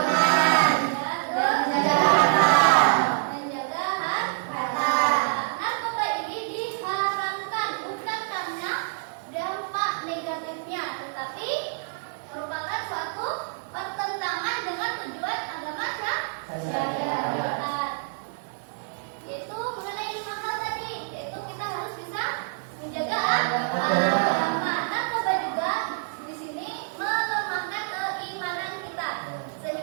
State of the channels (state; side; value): silent; left; 60 dB below the other